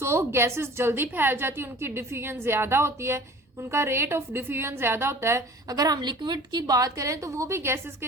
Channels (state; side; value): normal; both; correlation 0.44